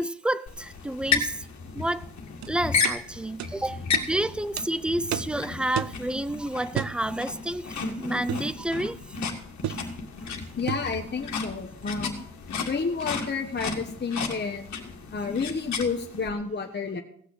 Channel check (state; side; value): normal; both; correlation 0.42